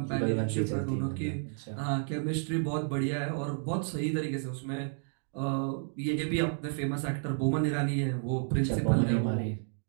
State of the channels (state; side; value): silent; left; digital silence